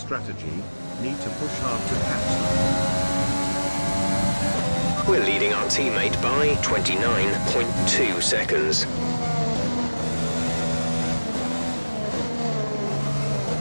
Need to push hard to catch them. We're leading our teammate by 29.2 seconds.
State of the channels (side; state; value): both; inverted; correlation -1.00